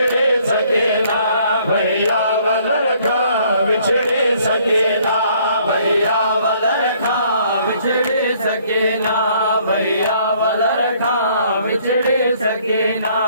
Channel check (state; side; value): inverted; both; correlation -0.62